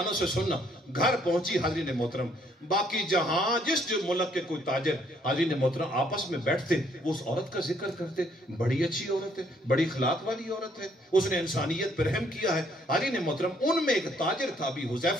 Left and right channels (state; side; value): normal; both; correlation 0.67